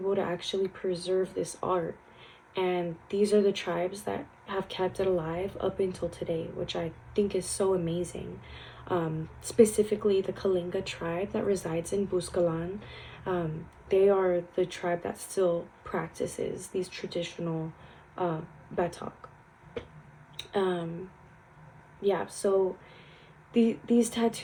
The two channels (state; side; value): identical; both; correlation 1.00